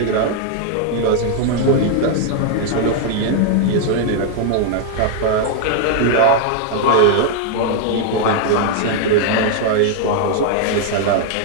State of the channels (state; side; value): different; both; correlation 0.00